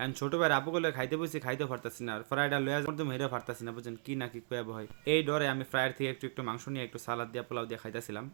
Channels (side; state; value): left; silent; digital silence